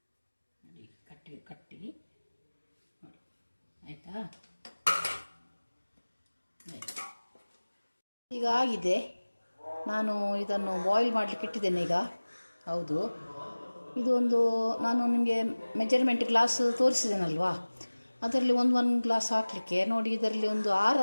ನೋಡಿ, ಕಟ್ಟಿ ನೋಡಿ, ಆಯಿತಾ? ಈಗ ಆಗಿದೆ. ನಾನು ಇದನ್ನು ಬಾಯ್ಲ್ ಮಾಡಲಿಕ್ಕೆ ಇಟ್ಟಿದ್ದೇನೆ ಈಗ. ಹೌದು, ಇದು ಒಂದು ನಾನು ನಿಮಗೆ ಮೆಜರ್ಮೆಂಟ್ ಗ್ಲಾಸ್ ತೋರಿಸಿದ್ದೇನಲ್ವಾ, ಅದರಲ್ಲಿ ಒಂದು ಗ್ಲಾಸ್ ಹಾಕಲಿಕ್ಕೆ ನೋಡಿ, ಇದರಲ್ಲಿ ಒಂದು 6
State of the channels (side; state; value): both; inverted; correlation -1.00